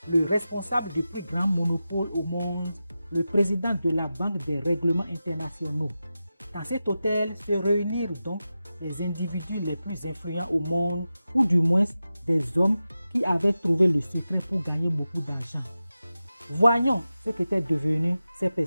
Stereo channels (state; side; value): inverted; both; correlation -0.93